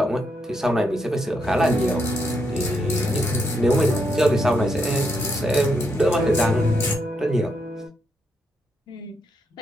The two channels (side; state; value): both; normal; correlation 0.79